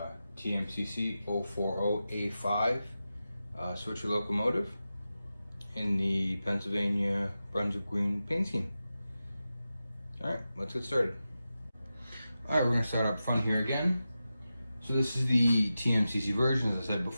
TMCC 040A5 Swithcer locomotive in the Pennsylvania Brunswick Green paint scheme. Alright, let's get started. Alright, we're going to start up front here again. So this is the TMCC version, as I said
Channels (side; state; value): both; inverted; correlation -0.92